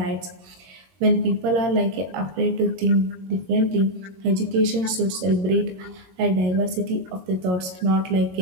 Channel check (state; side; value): late; left; 22 ms